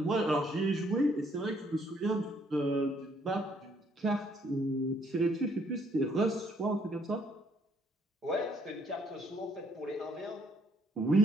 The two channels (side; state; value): both; normal; correlation 0.67